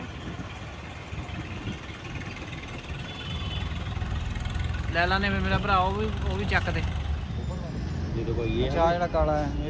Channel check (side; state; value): both; identical; correlation 1.00